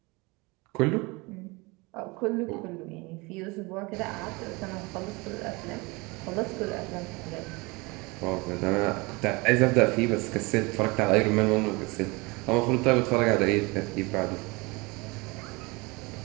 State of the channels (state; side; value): quieter; left; 25.7 dB